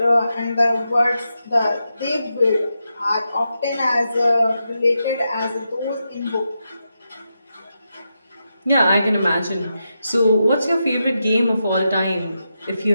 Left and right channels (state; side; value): inverted; both; correlation -0.87